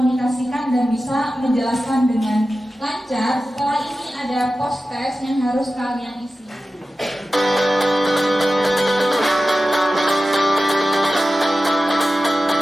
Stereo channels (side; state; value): both; normal; correlation 0.94